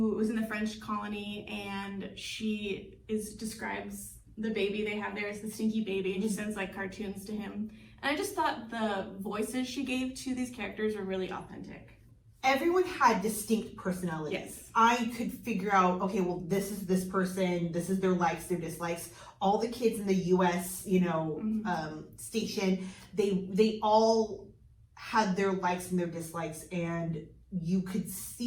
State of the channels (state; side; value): identical; both; correlation 1.00